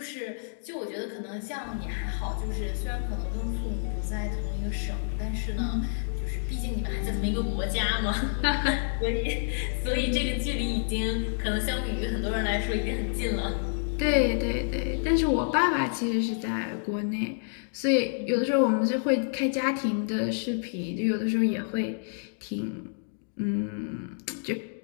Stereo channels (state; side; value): silent; right; digital silence